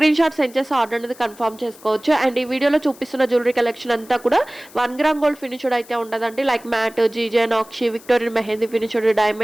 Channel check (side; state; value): left; noise; hiss, 22 dB below the sound